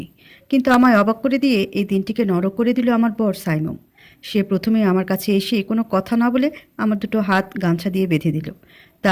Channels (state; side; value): identical; both; correlation 1.00